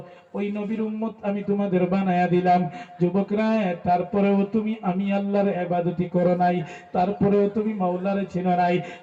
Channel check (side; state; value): both; identical; correlation 1.00